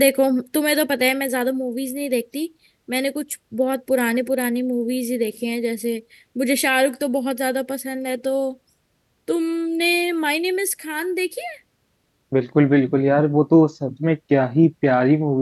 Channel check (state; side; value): identical; both; correlation 1.00